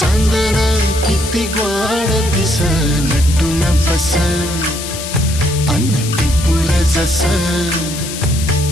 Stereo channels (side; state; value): left; noise; hiss, 8 dB below the sound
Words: किती ग्वाड दिस नटून बस अन्न टिपूर जस